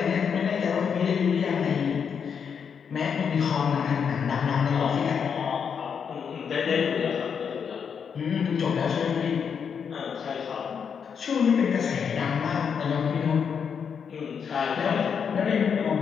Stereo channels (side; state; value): right; quieter; 6.9 dB